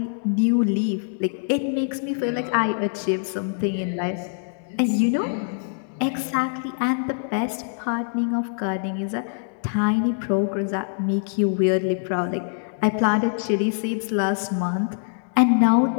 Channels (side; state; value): right; silent; digital silence